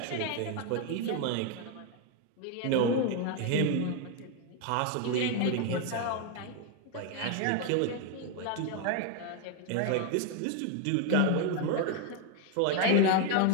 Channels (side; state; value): both; different; correlation 0.01